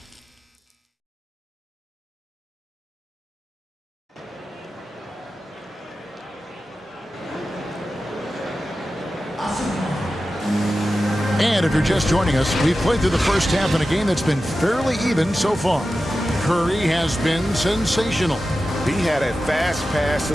And if you're just joining us, we've played through the first half in a game that's been fairly even so far. Curry has been sensational. He had a fast pass to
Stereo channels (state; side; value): normal; both; correlation 0.93